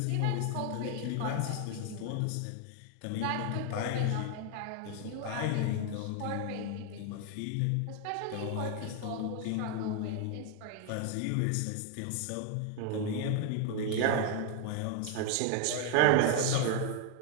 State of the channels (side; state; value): both; different; correlation 0.00